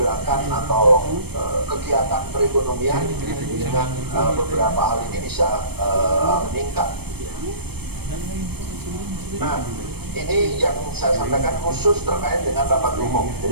pergerakan atau kegiatan perekonomian dengan beberapa hal ini bisa meningkat. Nah, ini yang saya sampaikan khusus terkait dengan rapat umum.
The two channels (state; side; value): late; left; 0.97 ms